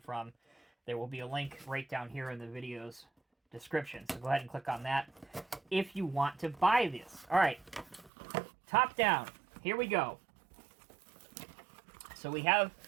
from. There will be a link right down here in the video's description. So go ahead and click on that if you want to buy this. All right, top down. Here we go. So we have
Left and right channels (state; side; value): drops out; left; at 8.1 s